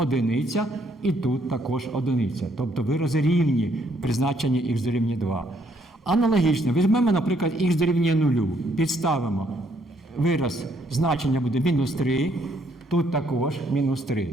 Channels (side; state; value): both; normal; correlation 0.69